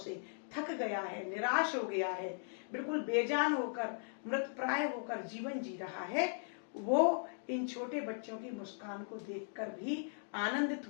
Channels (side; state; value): right; silent; digital silence